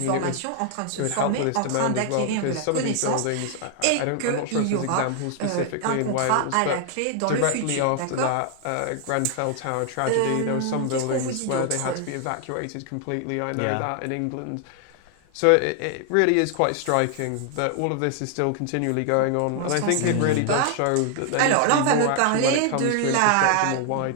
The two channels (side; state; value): both; different; correlation 0.00